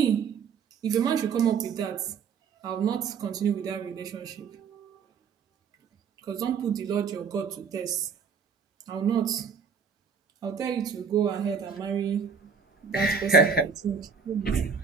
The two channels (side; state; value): left; quieter; 6.1 dB